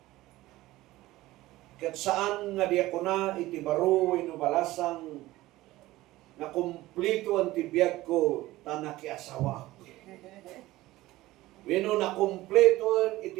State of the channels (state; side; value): quieter; left; 17.4 dB